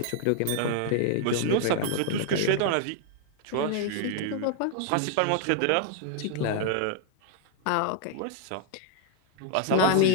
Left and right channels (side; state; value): both; different; correlation 0.00